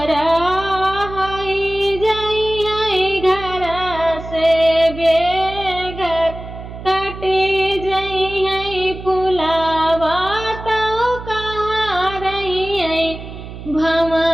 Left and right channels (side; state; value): right; noise; hum, 12 dB below the sound